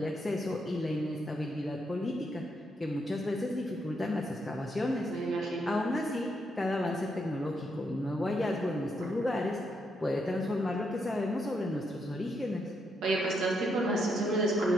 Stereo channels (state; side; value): normal; both; correlation 0.78